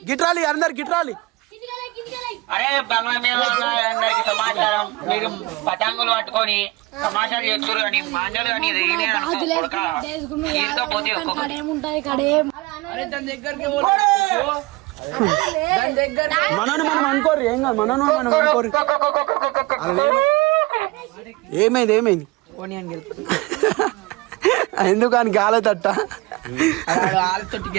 గిట్రాలి అందరు గిట్రాలి. అరే అందరికి సమాచారం మీరు పతంగులు పట్టుకొని సమాచారం చేస్తారు కానీ మాంజలు కానీ మనను మనం అనుకోరు ఏం కాదు. మనం అనుకోరు ఏమైంది ఎందుకు అని గాలి తట్ట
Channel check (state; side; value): quieter; left; 22.3 dB